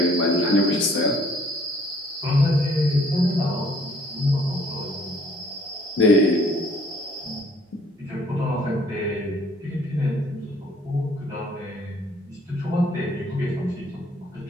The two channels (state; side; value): normal; both; correlation 0.59